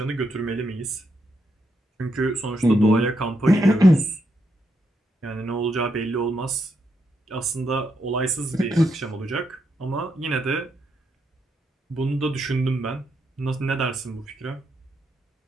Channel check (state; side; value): normal; both; correlation 0.80